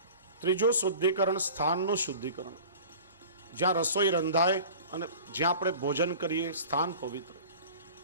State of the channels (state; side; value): inverted; both; correlation -0.40